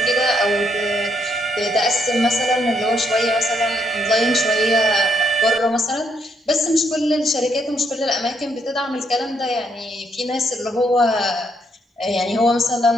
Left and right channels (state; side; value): normal; both; correlation 0.74